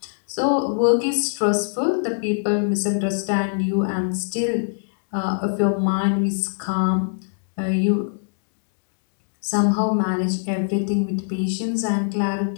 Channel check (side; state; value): right; silent; digital silence